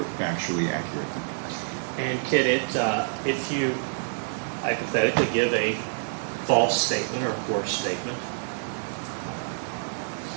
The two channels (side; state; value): left; silent; digital silence